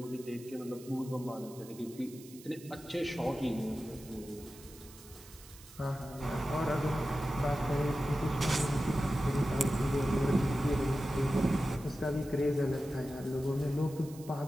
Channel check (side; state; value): right; noise; hiss, 20 dB below the sound